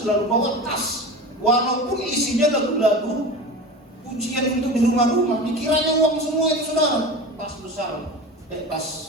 bawa tas, walaupun isinya lagu-lagu pujian untuk di rumah-rumah, dikiranya uang semua itu saudara. Tas besar, tas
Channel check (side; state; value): both; normal; correlation 0.31